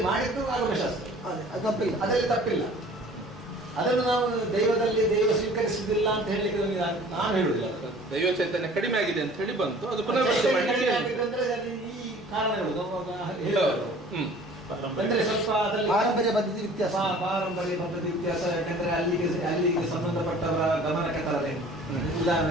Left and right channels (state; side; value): normal; both; correlation 0.48